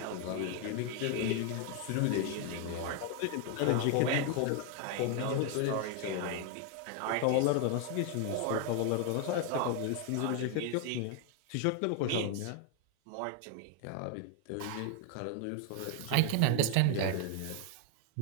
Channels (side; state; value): both; different; correlation 0.01